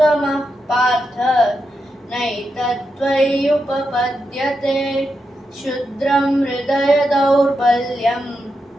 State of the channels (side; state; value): both; normal; correlation 0.86